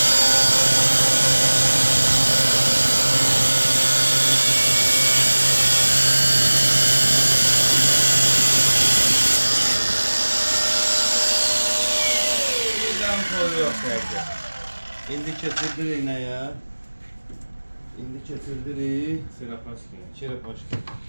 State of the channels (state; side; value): inverted; both; correlation -1.00